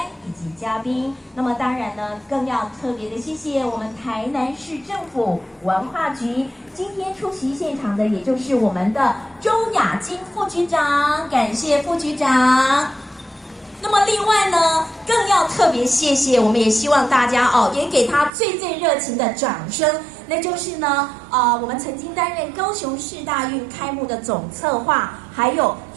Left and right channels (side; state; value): left; drops out; at 18.3 s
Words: 以及嘉宾。那么当然呢，更要特别的谢谢我们台南市政府文化局今天出席现场的，也就是我们的周雅金副局长，感谢副局长。那么另外呢，更要特别谢谢，我们也希望大家也给他最最热情的掌声。那就是呢，我们曾经担任高雄市大运开幕的总策划，还有